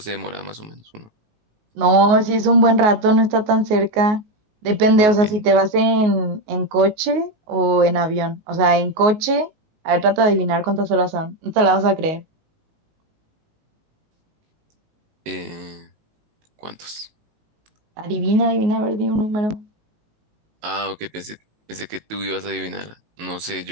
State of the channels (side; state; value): left; late; 19 ms